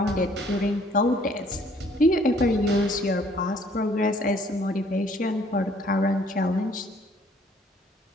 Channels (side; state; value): both; normal; correlation 0.60